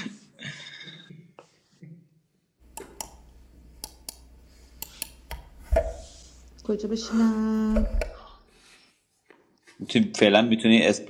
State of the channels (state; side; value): identical; both; correlation 1.00